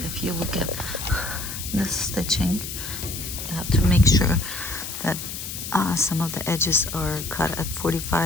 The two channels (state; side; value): noise; left; hiss, 7 dB below the sound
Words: if you look at this stitching, you have to make sure that some of the edges are cut at